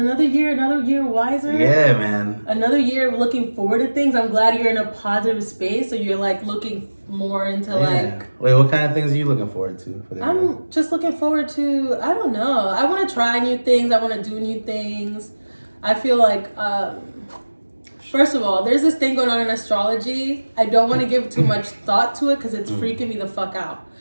year wiser. Yeah, man. Another year of looking forward to things. I'm glad you're in a positive space, so you're like looking more into like. Wait, what kind of things are you looking forward to? I'm just looking forward to, I don't know. I want to try new things. I want to do new things. I feel like, first of all, there's this thing going on in astrology. I don't want to give too much thought to it because it's freaking me the fuck out.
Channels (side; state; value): both; inverted; correlation -1.00